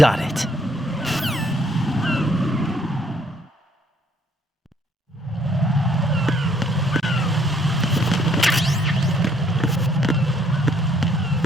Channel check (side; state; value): both; normal; correlation 0.66